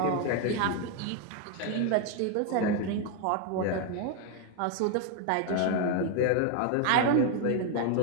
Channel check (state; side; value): different; both; correlation 0.01